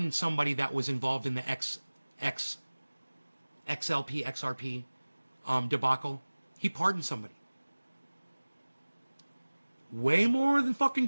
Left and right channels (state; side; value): inverted; both; correlation -1.00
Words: somebody that was involved in the XRP debacle. He pardoned somebody. Way more than